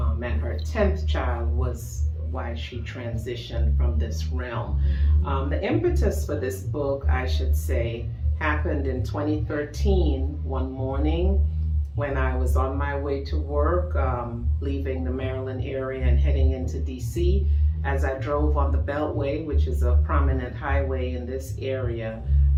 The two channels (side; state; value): both; identical; correlation 1.00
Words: And her 10th child was why she transitioned from this realm. The impetus for this book, I should say, happened in 2013, one morning when I was on my way to work, leaving the Maryland area and heading into DC. As I drove on the Beltway, which is a prominent highway in this area,